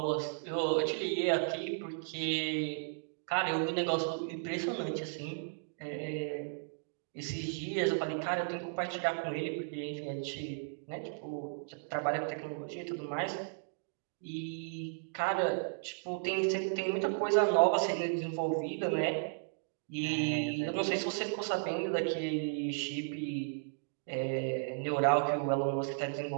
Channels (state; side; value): silent; left; digital silence